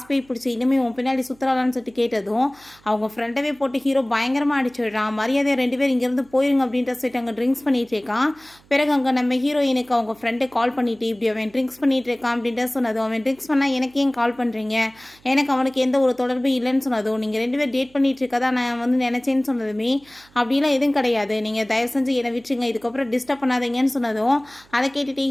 போய் பிடிச்சி இனிமேல் உன் பின்னாடி சுற்றுலான்னு சொல்லிட்டு கேட்டதும் அவங்க ஃப்ரெண்டவே போட்டு ஹீரோ பயங்கரமாக அடிச்சிடுறான். மரியாதையை 2 பேர் இங்கேருந்து போயிருங்க அப்படின்ற சொல்லிட்டு அங்கே ட்ரிங்க்ஸ் பண்ணிட்டு இருக்கான். பிறகு அங்கே நம்ம ஹீரோயினுக்கு அவங்க ஃப்ரெண்டை கால் பண்ணிட்டு இப்படி அவன் ட்ரிங்க்ஸ் பண்ணிட்டு இருக்கான் அப்படின்ற சொன்னதும், அவன் ட்ரிங்க்ஸ் பண்ணால் எனக்கு ஏன் கால் பண்ணுறீங்க, எனக்கு அவனுக்கு எந்த ஒரு தொடர்பும் இல்லைன்னு சொன்னதும், நீங்கள் 2 பேர் டேட் பண்ணிட்டு இருக்கதா நான் வந்து நினச்சேன்னு சொன்னதுமே, அப்படிலாம் எதுவும் கிடையாது, நீங்கள் தயவு செஞ்சு என்னை விட்டுருங்க, இதுக்கப்புறம் டிஸ்டர்ப் பண்ணாதீங்கன்னு சொன்னதும் அதை கேட்டுட்டு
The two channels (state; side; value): noise; right; hum, 29 dB below the sound